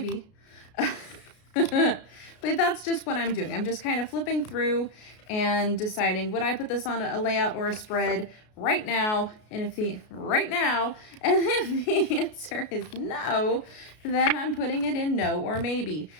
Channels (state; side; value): late; right; 33 ms